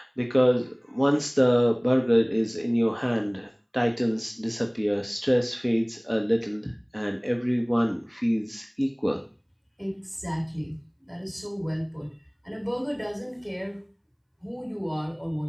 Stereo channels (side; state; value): both; identical; correlation 1.00